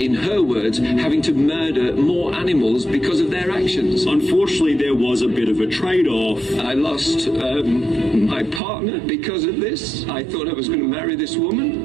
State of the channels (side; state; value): left; drops out; at 8.6 s